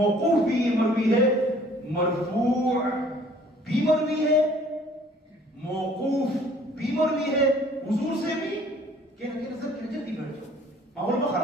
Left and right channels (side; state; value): both; normal; correlation 0.55